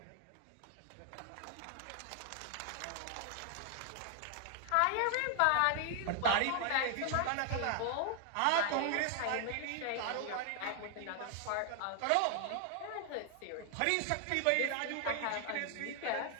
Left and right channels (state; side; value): different; both; correlation 0.00